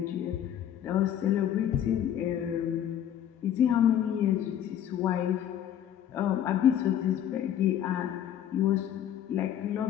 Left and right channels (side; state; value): right; quieter; 10.4 dB